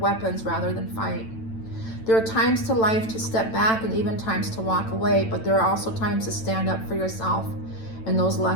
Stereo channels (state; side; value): late; right; 9.0 ms